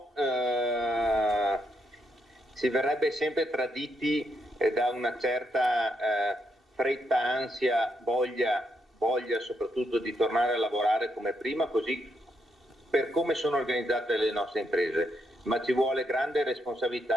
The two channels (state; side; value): normal; both; correlation 0.78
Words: si verrebbe sempre traditi da una certa fretta, ansia, voglia soprattutto di tornare a lavorare come prima, così per come sono organizzate le nostre imprese, ma ci vuole grande